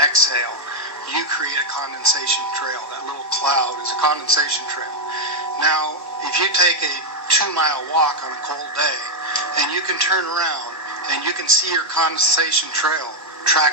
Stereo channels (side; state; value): both; normal; correlation 0.00